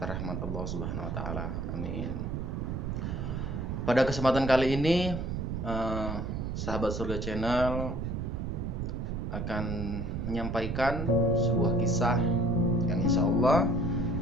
rahmat Allah Subhanahu wa Ta'ala. Amin. Pada kesempatan kali ini, sahabat surga channel akan menyampaikan sebuah kisah yang insya Allah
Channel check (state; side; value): noise; right; rumble, 3 dB below the sound